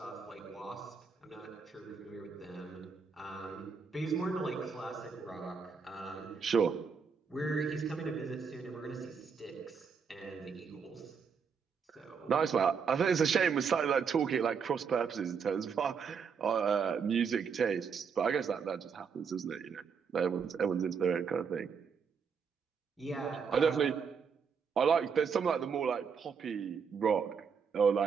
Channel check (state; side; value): quieter; left; 6.1 dB